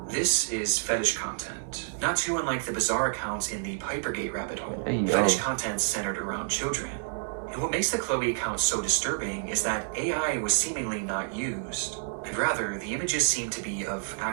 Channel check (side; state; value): left; silent; digital silence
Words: This is fetish content, not too unlike the bizarre accounts in the Pipergate rabbit hole. Hey, yo. Fetish content centered around children. And what makes the Chloe account so disturbing is that AI was seemingly not used, and rather the images seem to be of